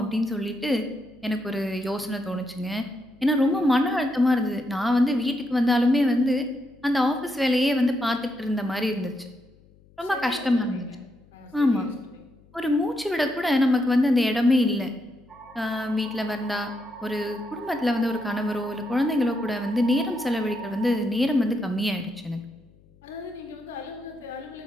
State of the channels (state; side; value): noise; left; hum, 28 dB below the sound